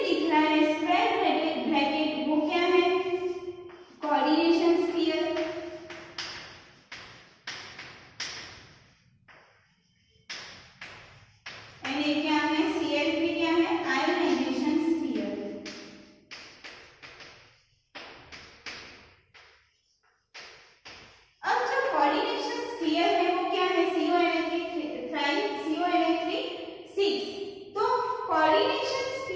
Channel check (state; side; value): identical; both; correlation 1.00